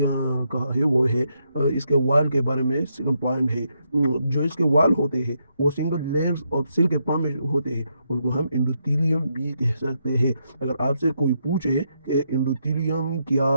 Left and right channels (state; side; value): inverted; both; correlation -0.79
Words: کہا ہے وہ ہے اس کے وال کے بارے میں. سیکنڈ پوائنٹ ہے جو اس کے وال ہوتے ہیں وہ سنگل لیئرز آف سیل کے فارم میں ہوتے ہیں. ان کو ہم انڈوتھیلیم بھی کہہ سکتے ہیں. اگر آپ سے کوئی پوچھے کہ انڈوتھیلیم